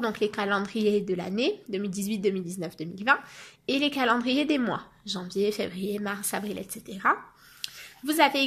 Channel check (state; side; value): identical; both; correlation 1.00